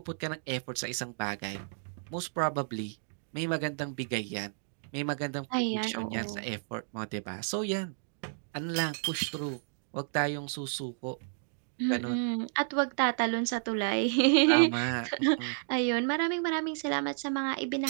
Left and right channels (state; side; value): silent; left; digital silence